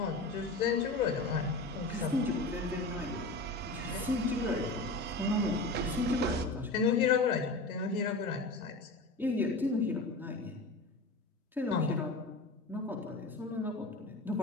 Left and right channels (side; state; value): right; quieter; 3.1 dB